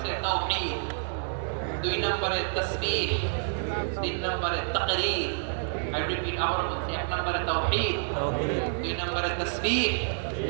তাওহীদ, 2 নম্বরে তাসবিহ, 3 নম্বরে তাকরীর। I repeat, আবার বলছি, 1 নম্বরে তাওহীদ, 2 নম্বরে তাসবিহ,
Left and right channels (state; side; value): silent; left; 59 dB below the other